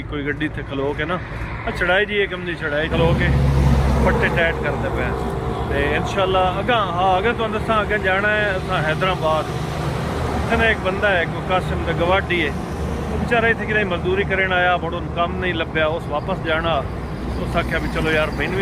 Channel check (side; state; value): both; identical; correlation 1.00